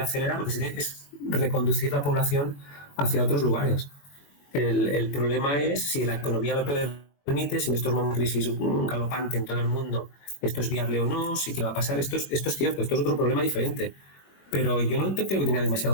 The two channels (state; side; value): late; right; 21 ms